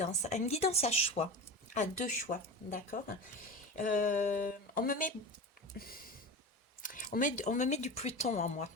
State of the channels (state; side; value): normal; both; correlation 0.27